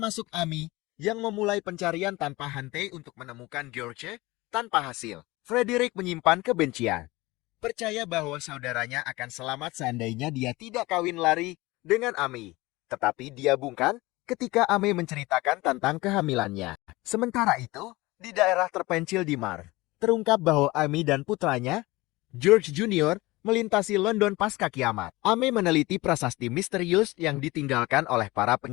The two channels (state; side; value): quieter; right; 21.0 dB